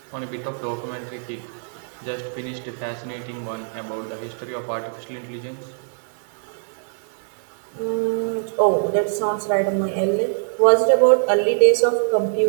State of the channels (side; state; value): left; silent; digital silence